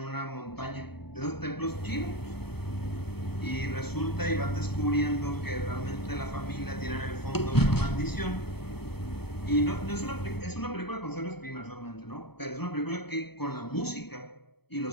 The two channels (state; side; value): late; right; 0.97 ms